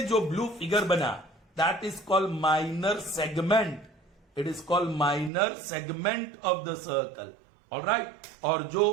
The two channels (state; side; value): drops out; left; at 5.3 s